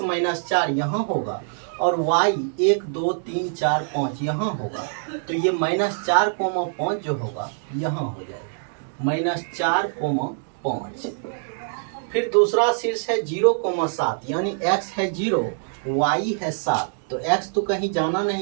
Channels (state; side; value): silent; left; digital silence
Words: -4 यहाँ होगा और y 1, 2, 3, 4, 5 यहाँ होगा। तो ये -4, 5 जो होगा यहाँ हो जाएगा -4, 5। फिर दूसरा शीर्ष है 0, 7, यानी x है 0, y है 7। तो x तो कहीं जाना